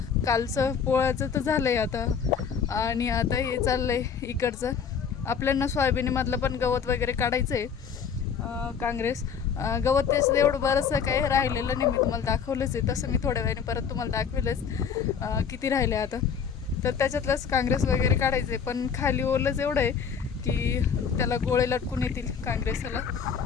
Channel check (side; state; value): right; quieter; 6.9 dB